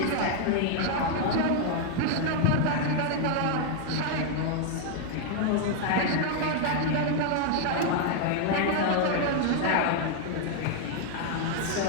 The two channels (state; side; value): different; both; correlation 0.00